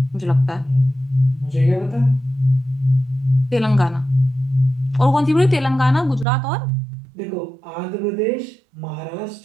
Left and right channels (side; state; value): left; drops out; at 6.2 s